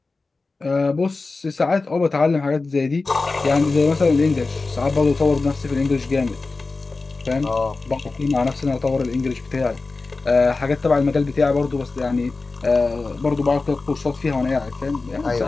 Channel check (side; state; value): right; quieter; 3.7 dB